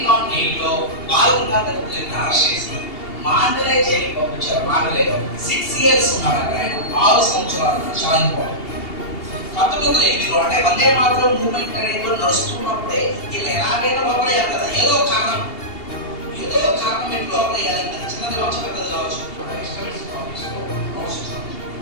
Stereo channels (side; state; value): right; late; 2.8 ms